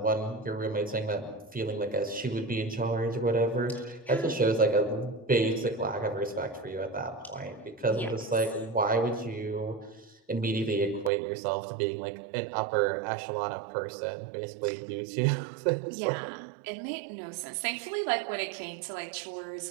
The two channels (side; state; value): left; drops out; at 11.1 s